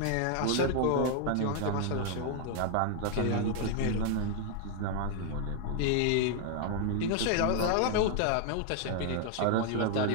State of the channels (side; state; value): both; different; correlation 0.00